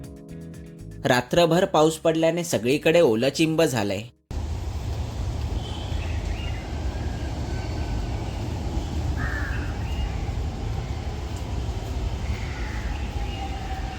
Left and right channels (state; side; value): identical; both; correlation 1.00